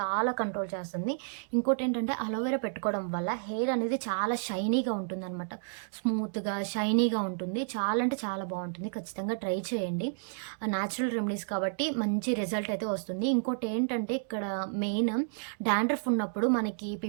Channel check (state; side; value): silent; left; digital silence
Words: కంట్రోల్ చేస్తుంది. ఇంకోటి ఏంటంటే అలోవెరా పెట్టుకోవడం వల్ల హెయిర్ అనేది చాలా షైనీగా ఉంటుందన్నమాట. స్మూత్గా షైనీగా ఉంటుంది. చాలా అంటే చాలా బాగుంటుంది. ఖచ్చితంగా ట్రై చేయండి. న్యాచురల్ రెమెడీస్ కాబట్టి మంచి రిజల్ట్ అయితే వస్తుంది. ఇంకోటి ఏంటంటే ఇక్కడ మెయిన్ డాండ్రఫ్ ఉన్నప్పుడు మనకి